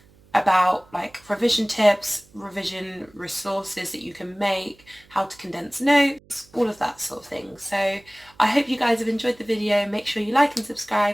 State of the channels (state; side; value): noise; right; hum, 29 dB below the sound